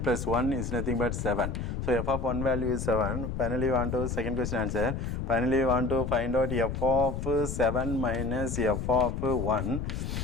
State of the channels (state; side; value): noise; left; rumble, 4 dB below the sound